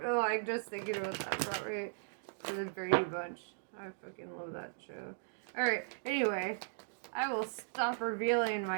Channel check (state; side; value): silent; left; digital silence